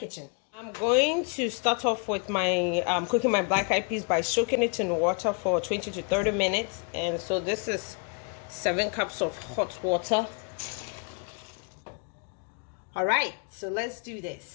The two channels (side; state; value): right; quieter; 36.5 dB